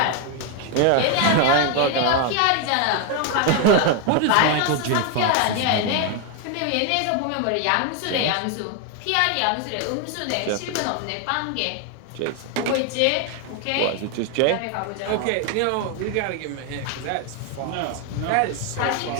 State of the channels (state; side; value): different; both; correlation 0.01